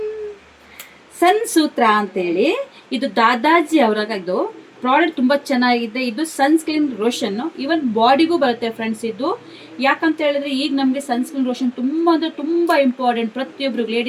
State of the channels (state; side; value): identical; both; correlation 1.00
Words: ಸನ್ ಸೂತ್ರ ಅಂತೇಳಿ. ಇದು ದಾದಾಜಿ ಅವರಾಗದು ಪ್ರಾಡಕ್ಟ್ ತುಂಬ ಚೆನ್ನಾಗಿದೆ. ಇದು ಸನ್ಸ್ಕ್ರೀನ್ ರೋಷನ್, ಇವನ್ ಬಾಡಿಗೂ ಬರುತ್ತೆ ಫ್ರೆಂಡ್ಸ್. ಇದು ಯಾಕಂತ ಹೇಳಿದ್ರೆ ಈಗ ನಮಗೆ ಸನ್ಸ್ಕ್ರೀನ್ ರೋಷನ್ ತುಂಬ ಅಂದರೆ ತುಂಬ ಇಂಪಾರ್ಟೆಂಟ್. ಪ್ರತಿಯೊಬ್ಬರಿಗೂ,